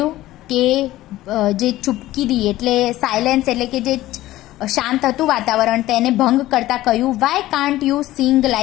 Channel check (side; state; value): right; quieter; 15.9 dB